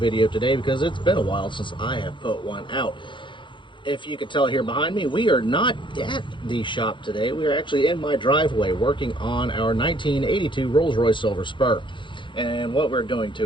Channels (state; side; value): late; right; 0.23 ms